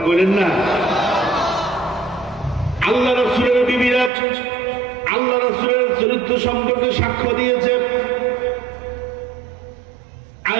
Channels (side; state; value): left; drops out; at 4.1 s